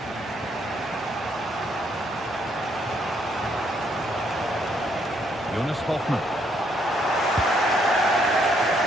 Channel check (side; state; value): both; normal; correlation 0.71